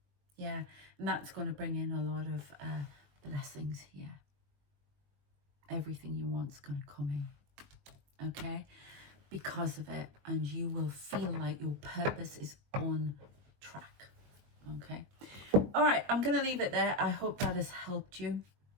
Yeah, and that's going to bring in a lot of blessings here. Everything you want's going to come in, okay, because of it, and you will feel like your purpose is on track, okay. All right, I'm going to leave it there. I hope that has helped you,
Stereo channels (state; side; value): late; left; 21 ms